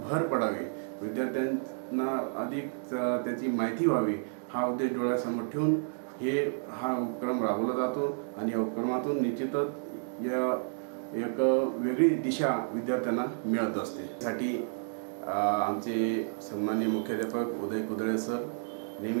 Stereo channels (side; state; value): left; silent; digital silence